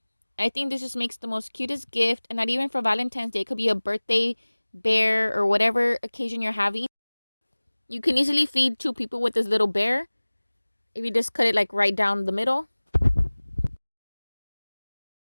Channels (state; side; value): inverted; both; correlation -1.00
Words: I think this just makes the most cutest gift. And not even for Valentine's Day. It could be a birthday bear or whatever occasion you're having. You can easily feed 2 people with this little bear if you just cut it like right down the middle.